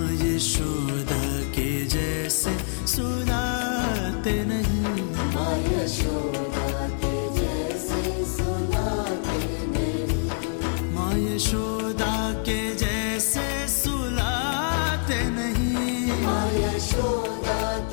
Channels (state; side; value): silent; right; 61 dB below the other